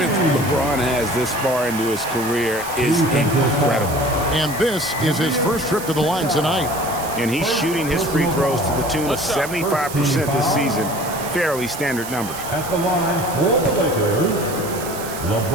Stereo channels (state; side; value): noise; right; hiss, 11 dB below the sound